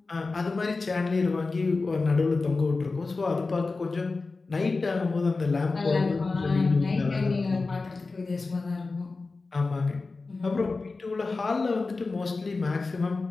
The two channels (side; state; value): right; quieter; 3.8 dB